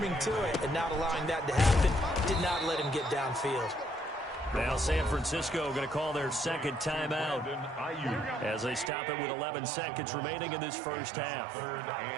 to it and not allowing that to happen? Did not let him get downfield. Now San Francisco going to call their 2nd timeout as they stop it with 11 seconds remaining in this first half. 3rd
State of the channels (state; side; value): drops out; left; at 8.9 s